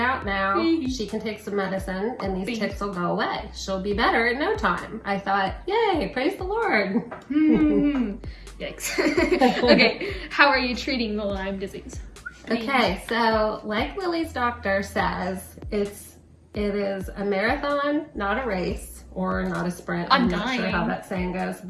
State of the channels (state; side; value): identical; both; correlation 1.00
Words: out now. She can take some medicine and these ticks will go away. She'll be better in no time. I thought, yay, praise the Lord. Yikes. Okay, how are you treating the Lyme disease? Okay, so like Lily's doctor says, it is a marathon, not a race, or not a sprint. I'm not sure how that saying goes,